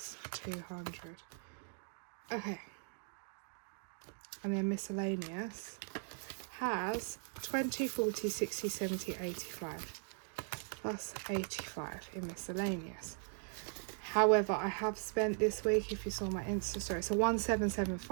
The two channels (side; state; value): left; silent; 52 dB below the other